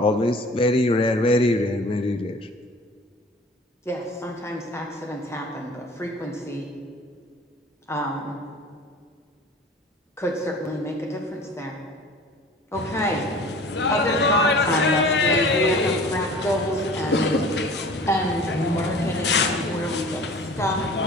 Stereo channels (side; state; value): both; normal; correlation 0.44